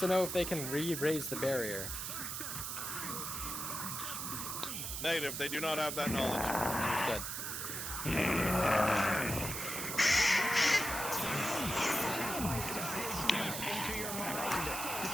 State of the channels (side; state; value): right; noise; hiss, 4 dB below the sound